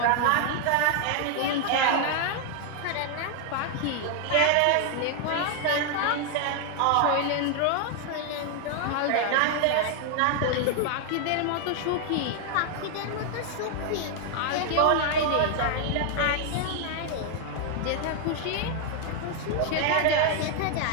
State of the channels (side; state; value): both; different; correlation 0.00